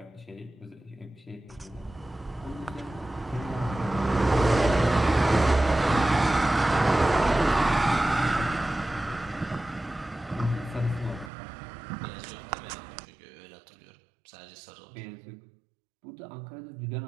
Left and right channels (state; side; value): drops out; left; at 11.3 s